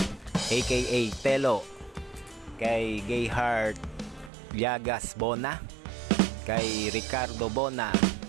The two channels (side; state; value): left; drops out; at 4.3 s